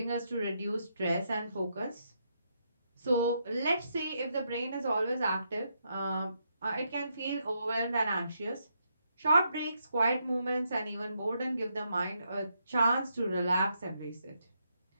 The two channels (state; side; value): inverted; both; correlation -0.79